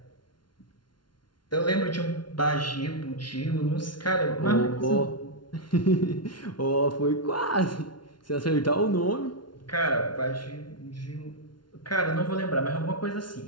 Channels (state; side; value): late; right; 0.71 ms